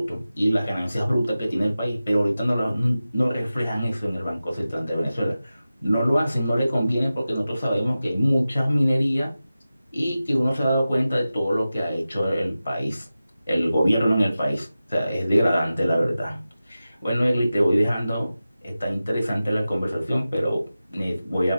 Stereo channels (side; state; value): both; inverted; correlation -0.94